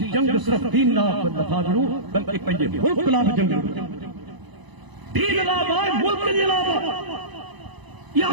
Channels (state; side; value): late; left; 1.0 ms